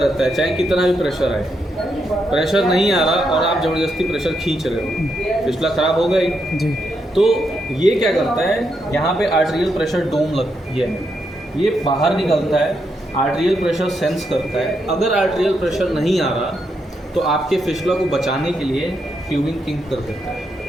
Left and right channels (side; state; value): both; normal; correlation 0.81